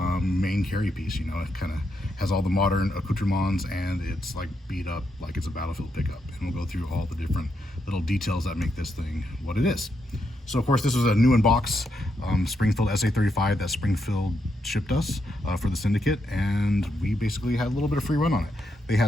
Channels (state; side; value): normal; both; correlation 0.81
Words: main carry piece. It kind of has all the modern accoutrements and it's like beat up like it's a battlefield pickup. And we'll go through all the different little details that make this thing what it is. So of course this was a new in box Springfield SA-35 that Springfield shipped us for the Syndicate, and we basically had a little bit of free run on it. They